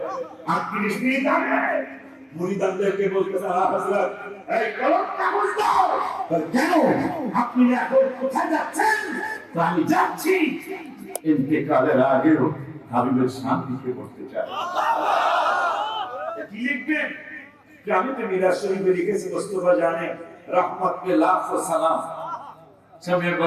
38 মিনিট আগে মুরিদানদেরকে বলতেছে, হযরত এই কলম কাগজ দাও। কেন আপনি এখন কোথায় যাচ্ছেন? আমি যাচ্ছি ইন্তেকালের আগেও হাবিবের শান্তিকে করতে চাই। কি লিখবেন? আমি তো মিরাজ শরীফে লিখেছি, মোস্তফা জানে রহমত पे लाखों सलाम, समय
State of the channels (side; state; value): both; identical; correlation 1.00